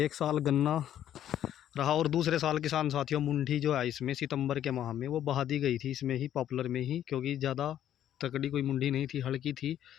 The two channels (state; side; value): quieter; right; 11.1 dB